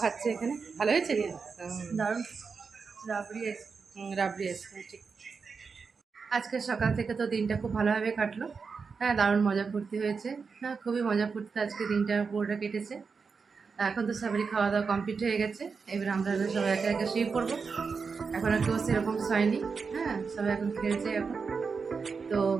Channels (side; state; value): left; quieter; 5.2 dB